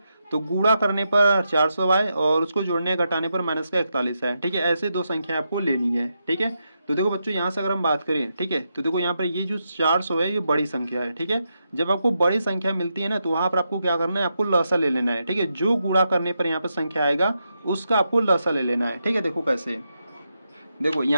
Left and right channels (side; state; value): both; inverted; correlation -0.85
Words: तो गुणा करने पर 400 आए और उसको जोड़ने या घटाने पर माइनस का 41 है, ठीक है। ऐसे दो संख्या आपको लेनी है, ठीक है। तो देखो बच्चों यहाँ से अगर हम बात करें, ठीक है, तो देखो यहाँ पर ये जो 400 है ये बड़ी संख्या है, ठीक है। जब आपको बड़ी संख्या मिलती है ना तो वहां पर आपको क्या करना है, आपको लसा ले लेना है, ठीक है। जो गुणा करने पर यहाँ पर संख्या आएगा उसका आपको लसा ले लेना है, ठीक है। देखो कैसे, देखो